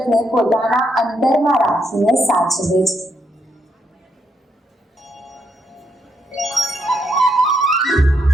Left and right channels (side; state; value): both; normal; correlation 0.77